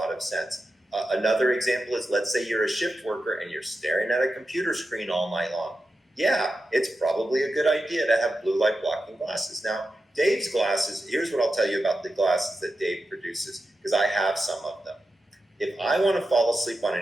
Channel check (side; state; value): both; normal; correlation 0.90